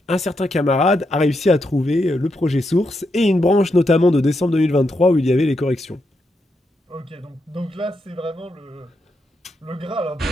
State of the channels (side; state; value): both; normal; correlation 0.82